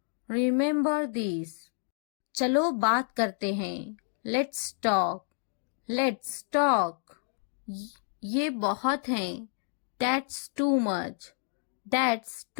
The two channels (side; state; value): right; silent; 58 dB below the other